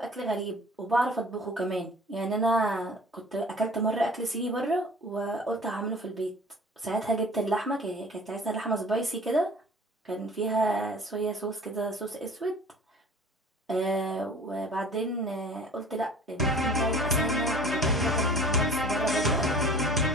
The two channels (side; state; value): both; normal; correlation 0.46